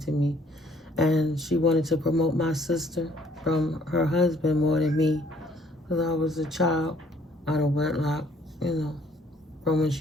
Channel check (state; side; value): normal; both; correlation 0.61